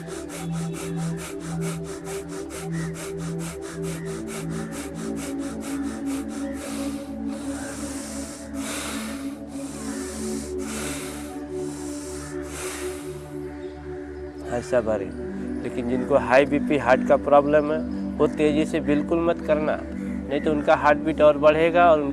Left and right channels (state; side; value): identical; both; correlation 1.00